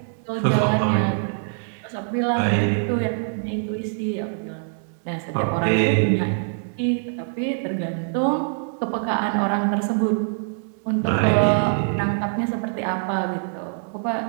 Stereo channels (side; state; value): left; silent; digital silence